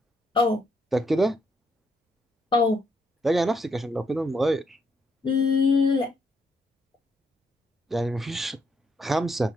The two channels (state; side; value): normal; both; correlation 0.74